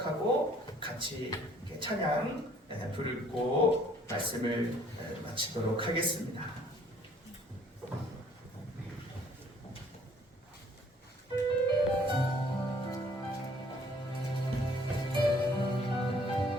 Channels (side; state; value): both; normal; correlation 0.59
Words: 같이 찬양 부르고 말씀을 마치도록 하겠습니다.